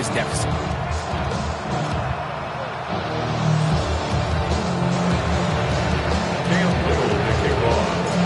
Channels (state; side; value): identical; both; correlation 1.00